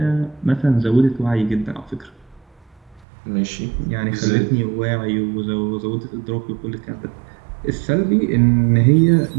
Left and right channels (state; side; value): drops out; left; at 3.1 s